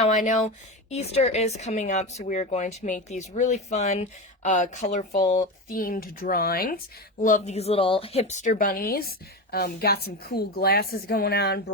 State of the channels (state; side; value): normal; both; correlation 0.21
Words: I know Easter is coming up, so we are going to make these really fun, colorful, themed drawings. Love these little hipster bunnies. Got some cool glasses going on,